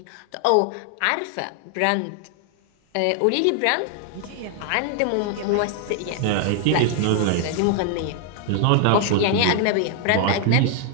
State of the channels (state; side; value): different; both; correlation 0.00